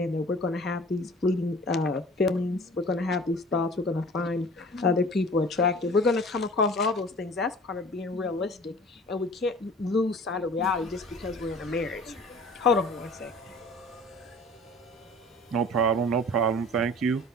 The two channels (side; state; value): both; normal; correlation 0.45